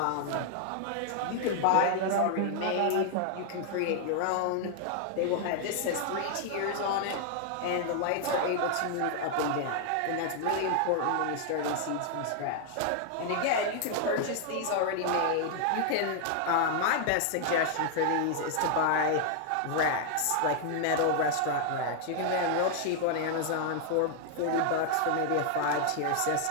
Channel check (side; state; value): both; different; correlation 0.00